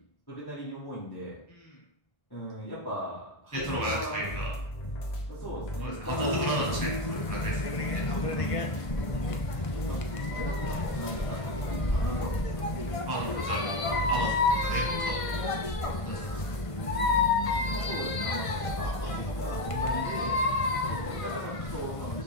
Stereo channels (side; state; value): right; late; 1.5 ms